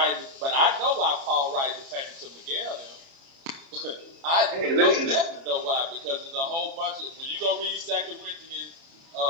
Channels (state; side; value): late; left; 30 ms